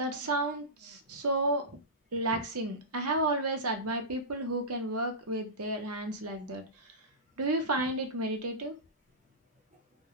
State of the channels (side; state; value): both; normal; correlation -0.17